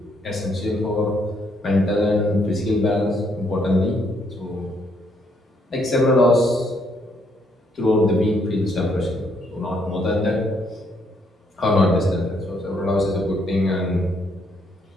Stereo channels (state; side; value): normal; both; correlation 0.72